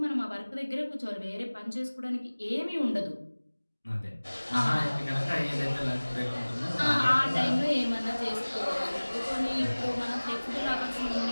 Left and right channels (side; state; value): both; inverted; correlation -1.00